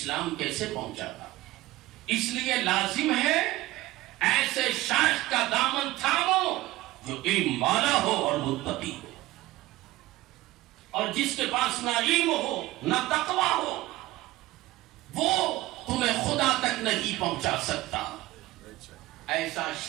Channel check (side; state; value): left; quieter; 17.8 dB